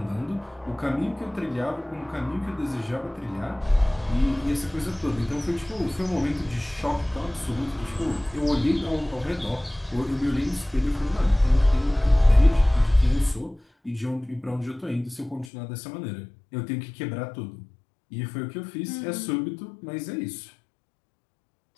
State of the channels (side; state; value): right; drops out; at 15.5 s